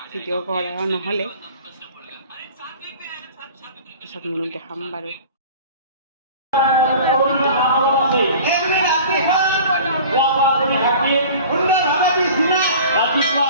ভিডিঅ' কৰা নহ'লে, পিছত মনত দেখাম বাৰু।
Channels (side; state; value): both; inverted; correlation -0.42